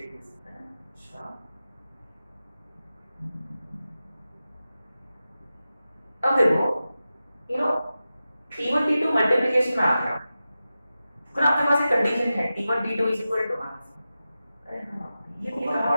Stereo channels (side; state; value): both; inverted; correlation -0.93